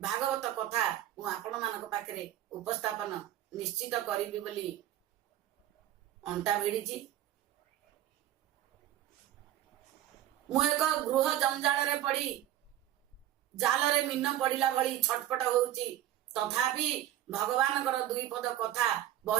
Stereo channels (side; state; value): left; quieter; 12.7 dB